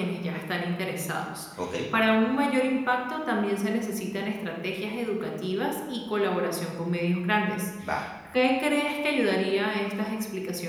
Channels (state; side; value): identical; both; correlation 1.00